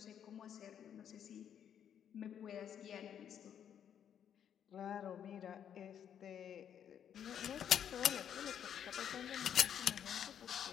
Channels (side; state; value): right; quieter; 9.0 dB